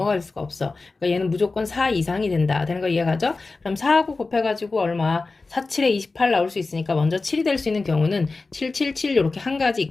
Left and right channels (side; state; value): right; quieter; 3.7 dB